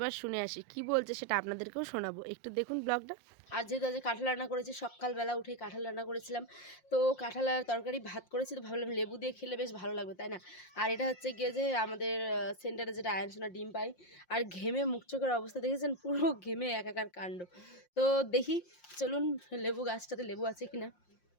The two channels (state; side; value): late; right; 5.6 ms